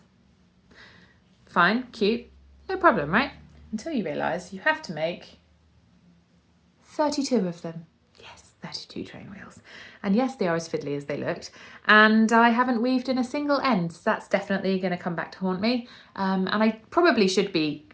Fine, cute, no problem, right? Until you realise you have to make 32 of them. Yes, 32 train wheels. And yes, they are as fiddly as they looked. And I haven't weaved in a single end, so that's definitely going to come back to haunt me. And I probably should be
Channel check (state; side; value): identical; both; correlation 1.00